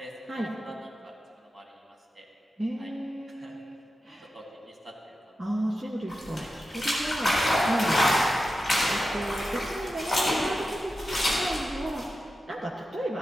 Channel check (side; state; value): both; normal; correlation 0.91